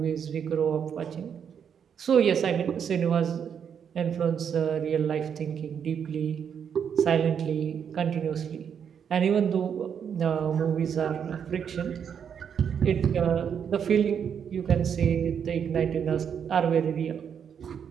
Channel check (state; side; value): quieter; left; 7.7 dB